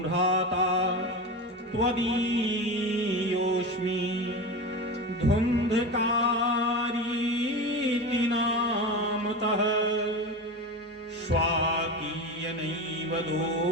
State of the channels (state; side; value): normal; both; correlation 0.25